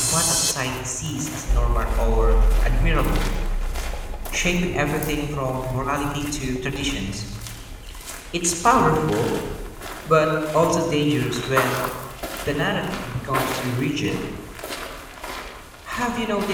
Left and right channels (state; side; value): identical; both; correlation 1.00